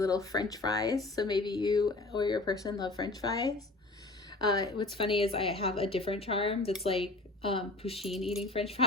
French fries. So maybe you or your person love French fries. What's funny is I have a different charm that's like Pusheen eating French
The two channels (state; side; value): quieter; right; 3.0 dB